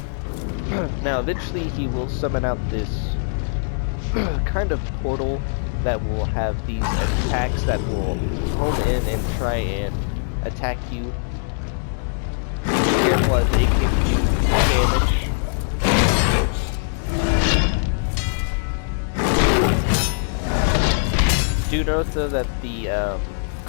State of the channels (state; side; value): silent; right; digital silence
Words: Now eventually he will summon out this kind of portal that will have these attacks that will home in and try and attack you. Be careful as they can do damage. Do note though that the